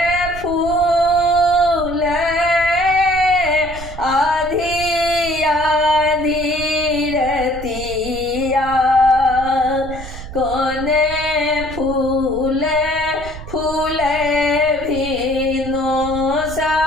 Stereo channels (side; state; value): right; noise; rumble, 12 dB below the sound